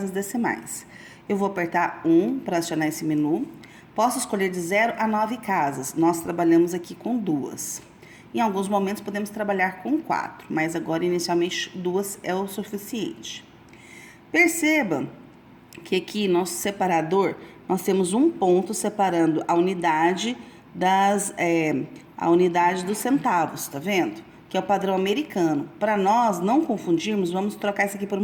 decimais. Eu vou apertar 1 para acionar esse menu. Posso escolher de 0 a 9 casas. Nós trabalhamos aqui com 2. Em alguns momentos podemos trabalhar com 4, mas agora inicialmente 2 é o suficiente. Perceba que aqui nosso separador, nós temos um ponto separando a unidade dos centavos, tá vendo? Que é o padrão americano. Para nós não confundirmos, vamos trocar isso aqui por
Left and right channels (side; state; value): both; identical; correlation 1.00